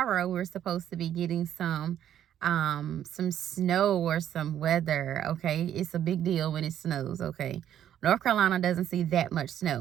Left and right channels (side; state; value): left; quieter; 10.6 dB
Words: we're supposed to be getting some snow or some weather, okay? It's a big deal when it snows, okay? North Carolina doesn't see that much